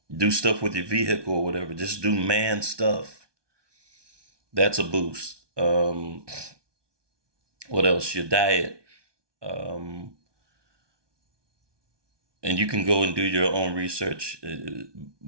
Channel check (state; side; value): late; left; 1.2 ms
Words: do stuff with your vehicle or whatever. Just do man stuff. That's a boost. What else? Your diet. Um, and you can go and do your own research.